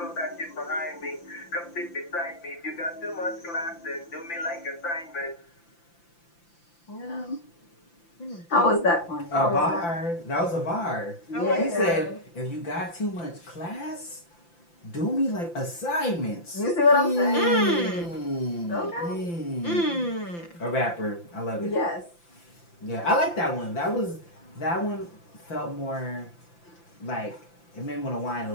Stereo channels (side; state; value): right; late; 5.9 ms